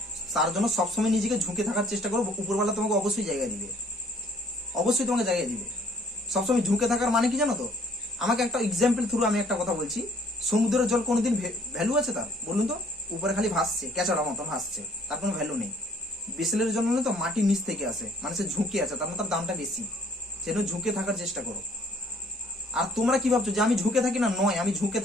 তার জন্য সবসময় নিজেকে ঝুঁকে থাকার চেষ্টা করো, উপরওয়ালা তোমাকে অবশ্যই জায়গা দিবে, অবশ্যই তোমাকে জায়গা দিবে। সবসময় ঝুঁকে থাকার মানে কি জানো তো? আমাকে একটা এক্সাম্পল থ্রু আমি একটা কথা বলছি। সমুদ্রের জল কোনোদিন ভ্যালু আছে তার? বলুন তো। উপরে খালি ভাসছে, ক্যাচড়া মতো ভাসছে, তার কোনো ভ্যালু নেই। বিসলের জন্য তো মাটির নিচ থেকে আসে, মানে সে ঝুঁকে আছে, তার মানে তার দামটা বেশি। সেজন্য ঝুঁকে থাকার চেষ্টা করো। আর তোমরা কি ভাবছো যে আমি ঝুঁকে থাকি না? নয়, আমি ঝুঁকে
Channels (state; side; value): normal; both; correlation 0.60